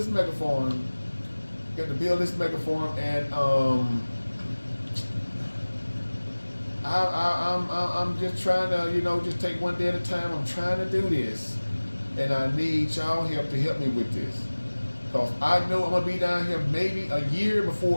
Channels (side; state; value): both; inverted; correlation -1.00